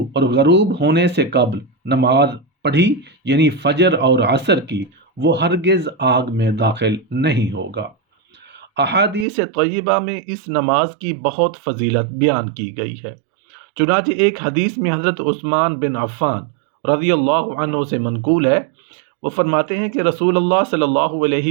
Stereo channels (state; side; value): drops out; left; at 9.2 s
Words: اور غروب ہونے سے قبل نماز پڑھی، یعنی فجر اور عصر کی، وہ ہرگز آگ میں داخل نہیں ہوگا۔ احادیث طیبہ میں اس نماز کی بہت فضیلت بیان کی گئی ہے۔ چنانچہ ایک حدیث میں حضرت عثمان بن عفان رضی اللہ عنہ سے منقول ہے، وہ فرماتے ہیں کہ رسول اللہ صلی اللہ